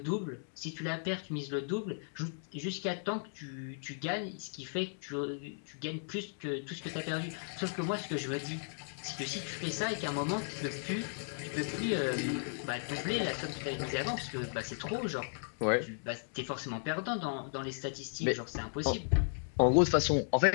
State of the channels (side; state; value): right; silent; digital silence